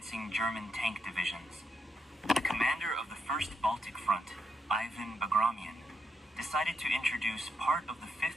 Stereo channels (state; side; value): normal; both; correlation 0.81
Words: German tank divisions. The commander of the First Baltic Front, Ivan Bagramian, decided to introduce part of the